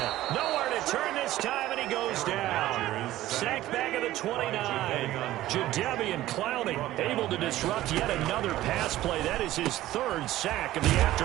Nowhere to turn this time, and he goes down. Sacked back at the 29. Jadeveon Clowney able to disrupt yet another pass play. That is his 3rd sack of the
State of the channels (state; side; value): quieter; left; 15.1 dB